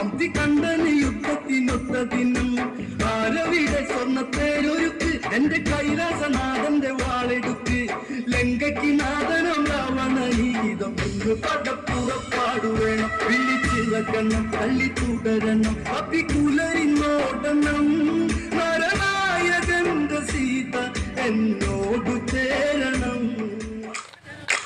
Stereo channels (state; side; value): identical; both; correlation 1.00